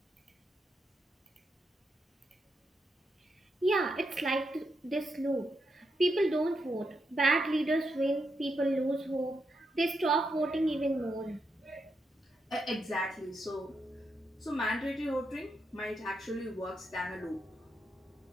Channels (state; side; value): normal; both; correlation 0.83